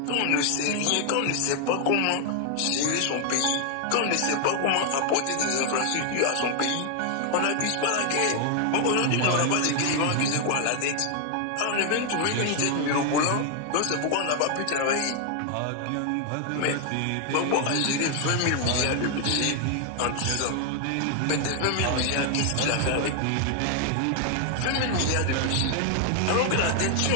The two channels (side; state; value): both; different; correlation 0.00